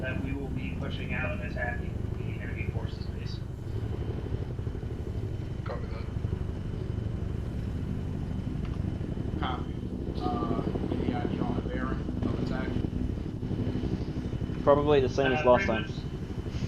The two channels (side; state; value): both; identical; correlation 1.00